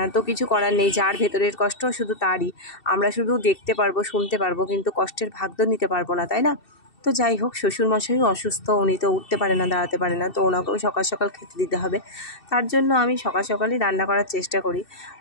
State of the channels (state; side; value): late; right; 2.7 ms